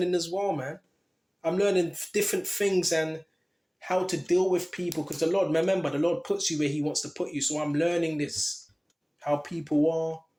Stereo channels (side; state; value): both; identical; correlation 1.00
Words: as well, man. I'm learning different things and how to deal with people. Because the Lord, remember, the Lord puts you where he wants to put you. So I'm learning this. How people are.